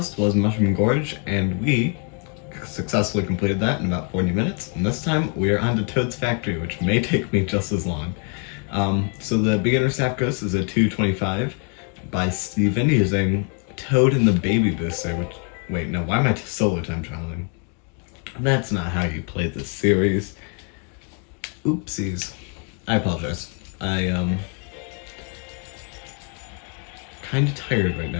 was Mushroom Gorge, and we successfully completed that in about 40 minutes, and this time we are on to Toad's Factory, which may take me just as long. So the beginner staff ghost is a 225 by Steven using Toad and the Baby Booster, which, wait, no, why am I solo time trialing? That's not how you play this series. Oopsies. I apologize. I kind of tired right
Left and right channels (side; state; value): right; quieter; 39.5 dB